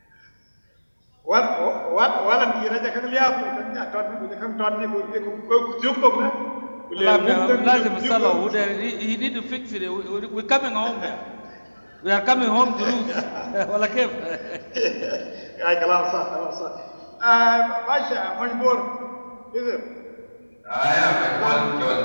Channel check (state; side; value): inverted; both; correlation -1.00